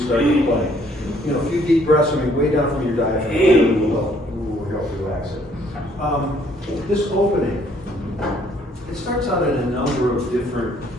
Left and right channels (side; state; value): both; normal; correlation 0.64